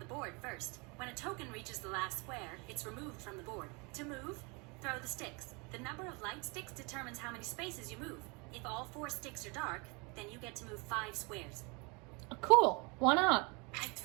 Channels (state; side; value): quieter; left; 29.8 dB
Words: board first. When a token reaches the last square, it's removed from the board. To move, throw the sticks. The number of light sticks determines how many spaces you move. If all 4 sticks are dark, then you get to move 5 squares. Cool. Why not? I